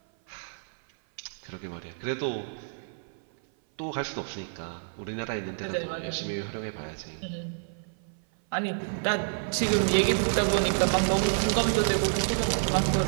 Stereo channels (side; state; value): left; silent; 57 dB below the other